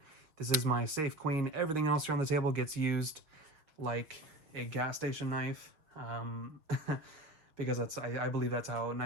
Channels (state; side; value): late; left; 6.4 ms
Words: This is my safe queen. Everything else here on the table gets used like a gas station knife, because I believe that's how